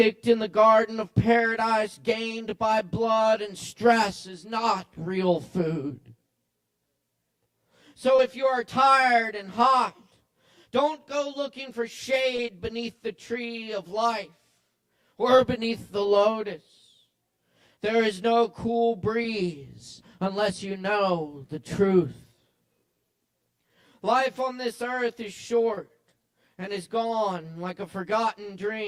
in the garden of paradise, gained by blood and stress, is not real food. So if you are tired and hot, don't go looking for shade beneath the tree of life or beneath the lotus. There is no cool breeze unless you know the truth. Life on this earth is short and is gone like a forgotten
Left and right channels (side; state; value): both; identical; correlation 1.00